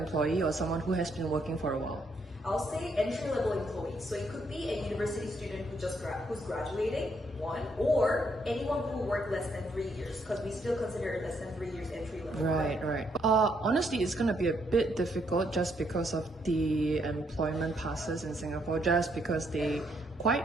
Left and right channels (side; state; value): both; normal; correlation 0.73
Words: or someone who has been working for a while? I'll say entry-level employee. So it could be a university student who's graduating, one, or anyone who worked less than 3 years, because we still consider less than 3 years entry-level. Right. Honestly, it's going to be a bit difficult just because of the employment passes in Singapore, just because they